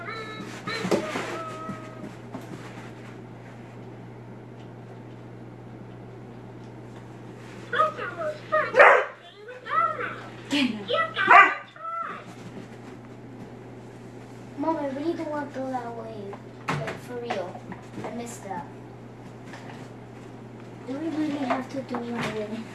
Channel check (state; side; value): identical; both; correlation 1.00